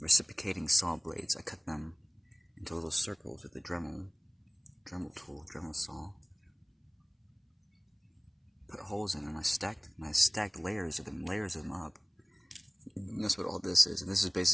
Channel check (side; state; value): both; identical; correlation 1.00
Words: saw blades. I cut them into little circles with a Dremel tool, Dremel saw. Put holes in them. I stacked layers of them up. And that's what all this is. And this is